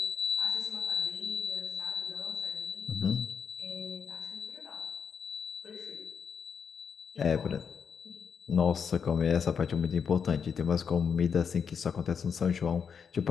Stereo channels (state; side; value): quieter; right; 6.7 dB